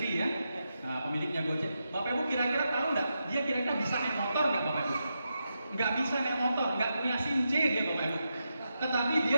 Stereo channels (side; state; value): both; inverted; correlation -0.86